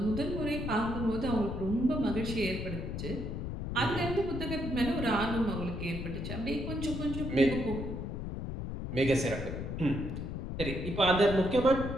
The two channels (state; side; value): noise; left; rumble, 5 dB below the sound